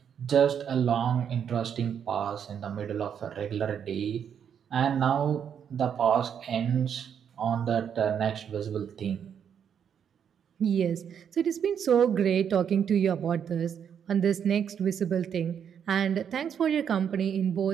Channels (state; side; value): quieter; left; 8.1 dB